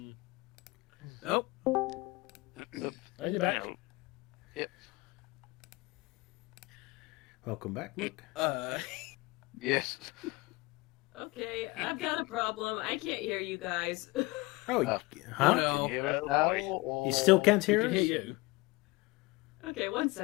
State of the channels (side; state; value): right; quieter; 23.1 dB